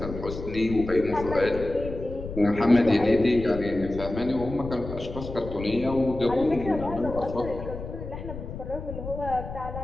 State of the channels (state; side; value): noise; left; rumble, 9 dB below the sound